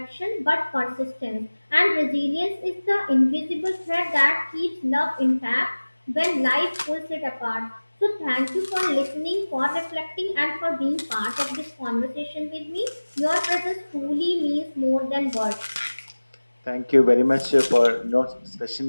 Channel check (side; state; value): both; inverted; correlation -1.00